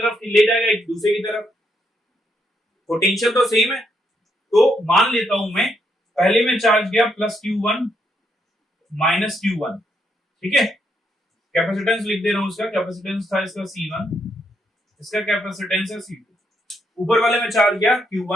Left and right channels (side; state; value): both; normal; correlation 0.76